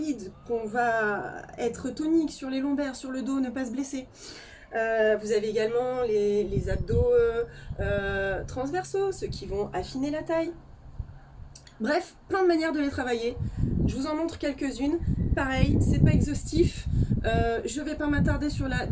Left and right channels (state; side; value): identical; both; correlation 1.00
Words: qu'on va être tonique sur les lombaires, sur le dos, ne pas se blesser. Vous avez également les abdos transversaux, ceux qui vont affiner la taille. Bref, plein de manières de les travailler. Je vous en montre quelques-unes. Pareil, c'est pas exhaustif. Je vais pas m'attarder sur la